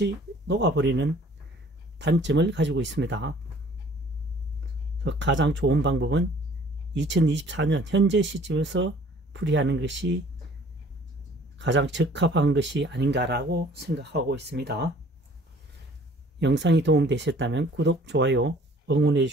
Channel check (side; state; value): both; normal; correlation 0.54